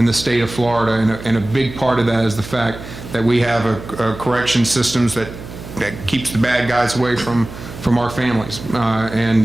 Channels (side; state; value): right; noise; hum, 13 dB below the sound